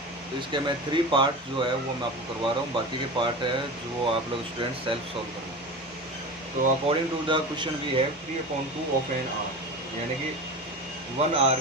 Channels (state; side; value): normal; both; correlation 0.29